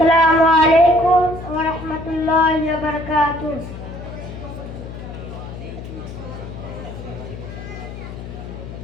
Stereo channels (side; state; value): left; noise; hum, 11 dB below the sound